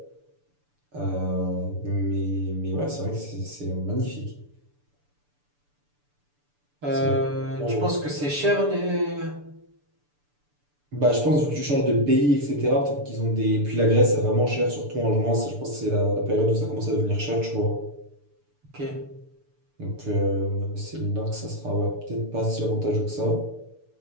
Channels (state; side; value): late; left; 6.9 ms